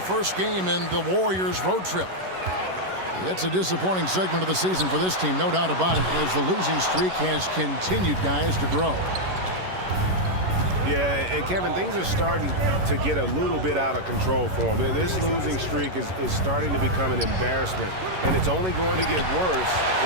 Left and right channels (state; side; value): late; left; 11 ms